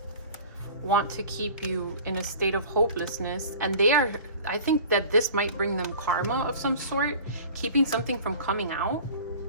want to keep you in a state of hopelessness, and I think that this might bring them karma of some sort, keeping something from coming out,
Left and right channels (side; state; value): both; inverted; correlation -0.42